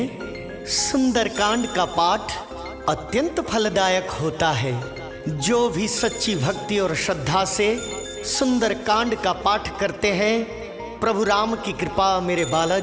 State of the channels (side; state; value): both; identical; correlation 1.00